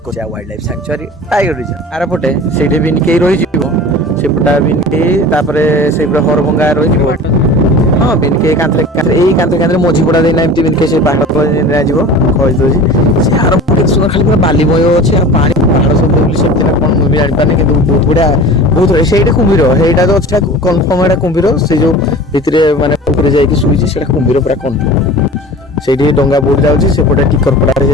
wildlife sanctuary tiger reserve आर पटे से बिनके रही सेपटा बिनके से हरभंगा रही हाँ बिनके कांतरे मझीपड़ा देना एमती बिनके से पहाड़ सुंदर खाली पूरा बालीमय अच्छे पानी पहाड़ सब से कौन मुझे जापारे कि बहुत बढ़िया बहुत से कुम्भीर ସେଇଟା तो अच्छा कन्फर्म है कुम्भीर से जो भितर माने जाइए शुई से कुम्भीर पूरा कन्फर्म से डंगा बोट जाऊँगी सेपटे टिकरपड़ा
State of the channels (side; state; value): both; normal; correlation 0.38